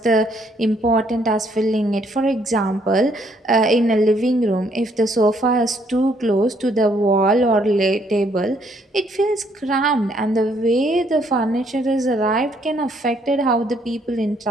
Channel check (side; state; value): both; normal; correlation 0.68